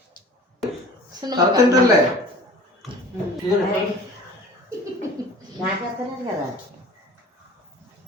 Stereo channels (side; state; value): both; normal; correlation 0.44